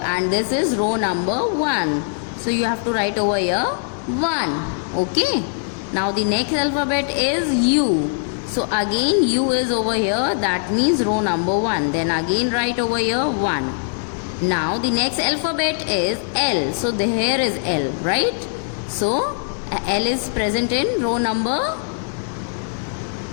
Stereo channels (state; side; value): silent; right; digital silence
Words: and this is row number 1. So you have to write over here 1. Okay. Now the next alphabet is U. So again U is over here, that means row number 1. Then again write over here 1. Now the next alphabet is L. So here is L, right? So L is present in row number